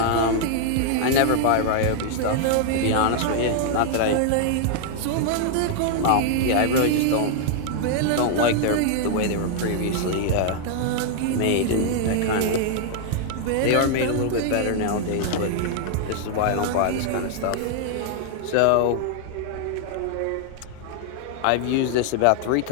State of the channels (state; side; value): different; both; correlation 0.00